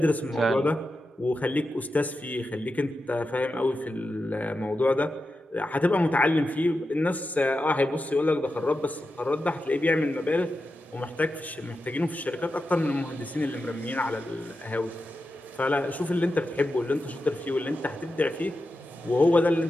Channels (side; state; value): both; normal; correlation 0.90